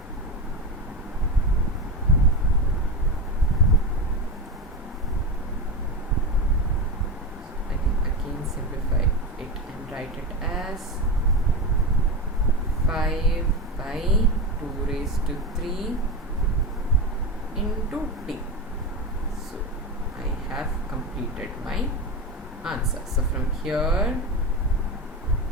simplify it and write it as 5 by 2 raised to 3 into t. So I have completed my answer. So from here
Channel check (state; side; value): normal; both; correlation 0.18